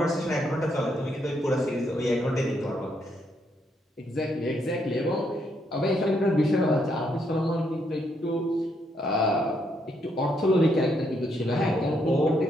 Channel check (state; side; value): normal; both; correlation 0.75